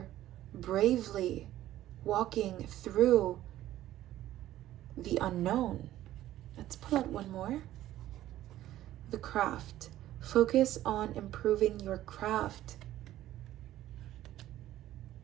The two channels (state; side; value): quieter; left; 13.8 dB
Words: bravely walking through the unknown. Let's pull out one more. The craft. Focus on improving your craft.